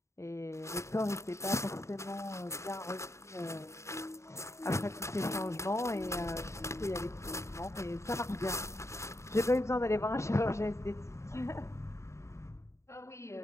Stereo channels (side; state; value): right; late; 0.14 ms